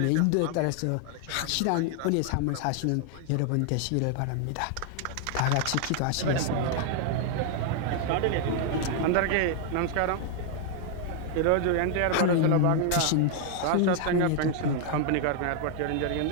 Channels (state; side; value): different; both; correlation 0.00